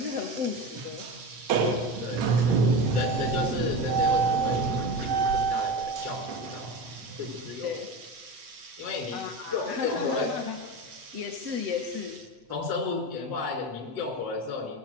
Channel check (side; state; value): left; late; 8.7 ms